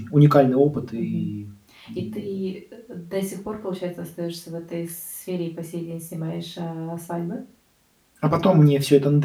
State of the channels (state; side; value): identical; both; correlation 1.00